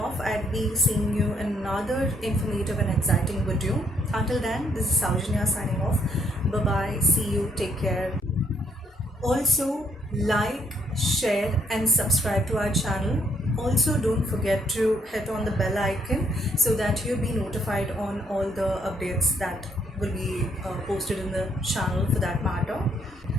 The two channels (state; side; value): normal; both; correlation 0.70